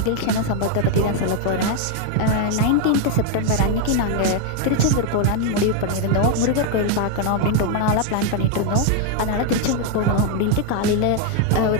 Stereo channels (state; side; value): different; both; correlation 0.01